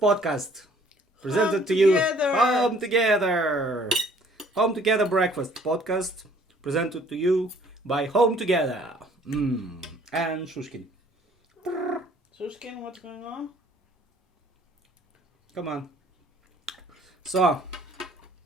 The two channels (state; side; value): normal; both; correlation 0.58